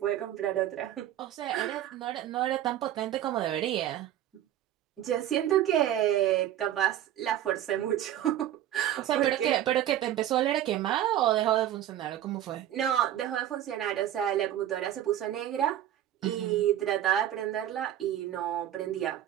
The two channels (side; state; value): left; quieter; 12.0 dB